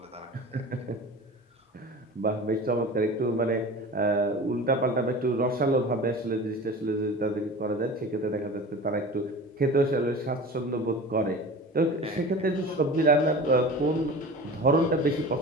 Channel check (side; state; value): both; normal; correlation 0.36